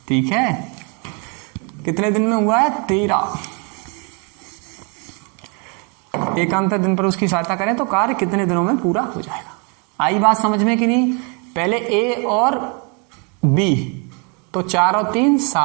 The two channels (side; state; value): left; quieter; 35.2 dB